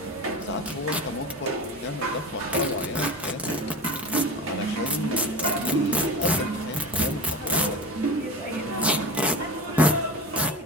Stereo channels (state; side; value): normal; both; correlation 0.29